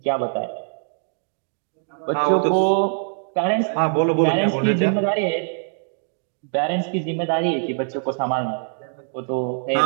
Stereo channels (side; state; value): left; silent; digital silence